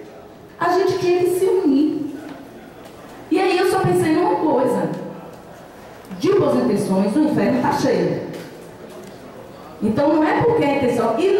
a gente tinha que se unir. E aí eu só pensei numa coisa: de boas intenções, o inferno está cheio. Então não é porque a intenção. E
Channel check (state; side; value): identical; both; correlation 1.00